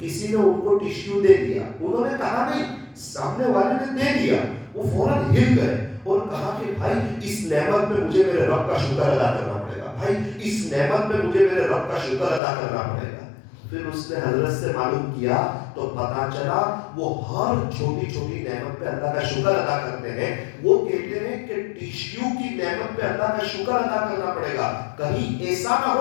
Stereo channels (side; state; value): right; drops out; at 12.4 s